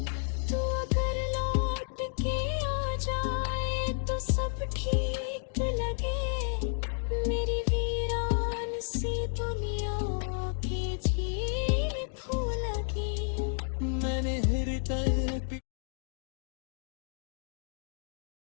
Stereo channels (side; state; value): right; silent; digital silence